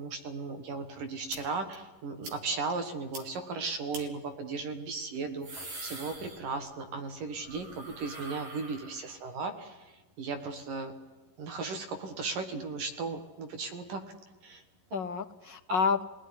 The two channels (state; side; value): late; left; 11 ms